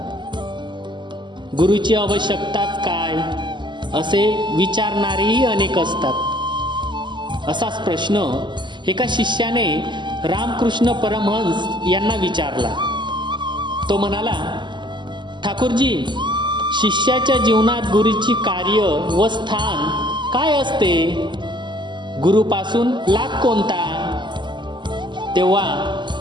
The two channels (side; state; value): left; late; 0.22 ms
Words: गुरुची आवश्यकताच काय असे विचारणारेही अनेक असतात। असाच प्रश्न एका शिष्याने रामकृष्ण परमहंस यांना विचारला। तो म्हणाला, ठाकूरजी, शिष्याच्या जीवनात गुरुची कार्य व स्थान काय असते? गुरुपासून लाभ कोणता? तेव्हा